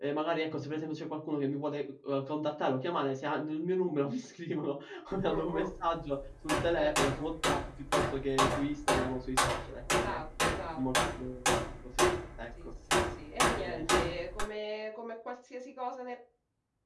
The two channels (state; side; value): identical; both; correlation 1.00